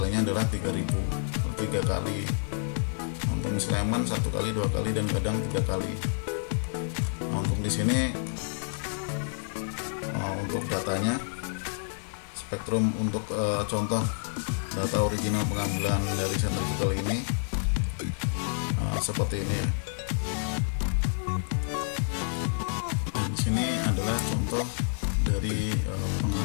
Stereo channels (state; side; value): silent; right; digital silence